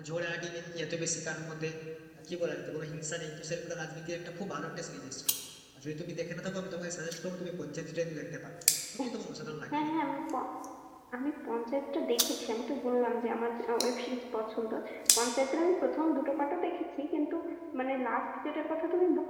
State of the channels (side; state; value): both; identical; correlation 1.00